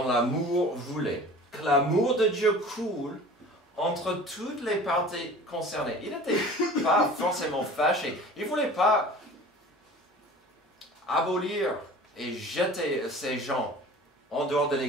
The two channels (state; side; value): normal; both; correlation 0.42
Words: l'amour, voulait que l'amour de Dieu coule entre toutes les parties concernées. Il n'était pas forcément fâché. Il ne voulait pas abolir et jeter ces gens en dehors de